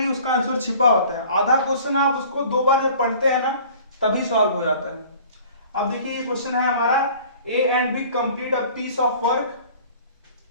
ही उसका आंसर छिपा होता है। आधा क्वेश्चन आप उसको 2 बार जब पढ़ते हैं ना तभी सॉल्व हो जाता है। अब देखिए ये क्वेश्चन है हमारा, A and B complete a piece of work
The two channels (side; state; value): both; inverted; correlation -0.48